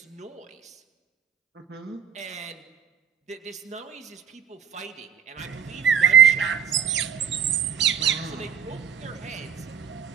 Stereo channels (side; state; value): left; quieter; 8.3 dB